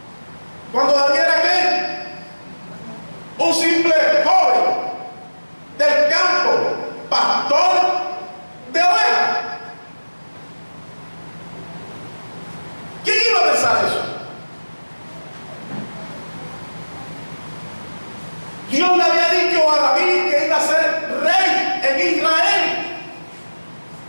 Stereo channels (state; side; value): inverted; both; correlation -1.00